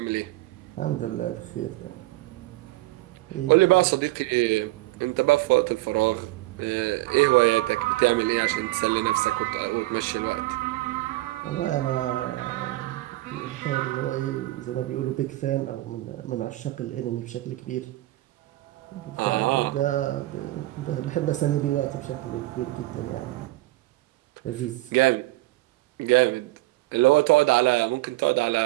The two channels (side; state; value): left; quieter; 18.7 dB